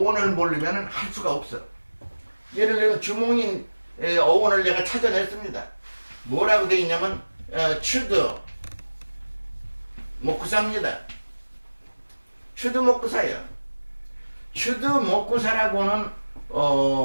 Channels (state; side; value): inverted; both; correlation -1.00